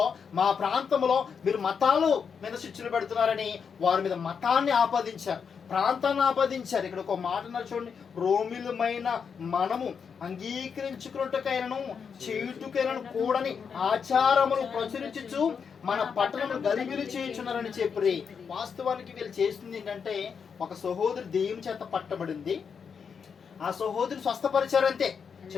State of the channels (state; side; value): quieter; right; 6.4 dB